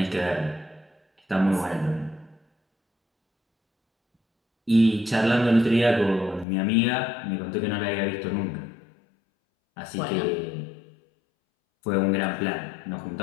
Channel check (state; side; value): drops out; right; at 6.5 s